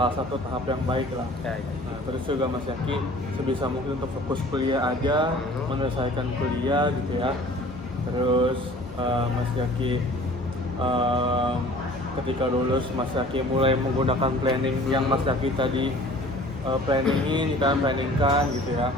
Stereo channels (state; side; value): normal; both; correlation 0.48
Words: satu tahap yang baik lah. Nah, terus juga Mas Jaki sebisa mungkin untuk fokus kuliah aja, menyelesaikan kuliah gitu ya. Terus Mas Jaki ketika lulus Mas Jaki mulai menggunakan planning yang Mas Jaki tadi planningkan gitu ya.